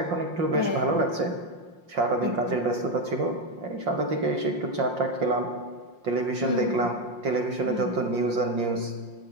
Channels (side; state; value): left; late; 5.6 ms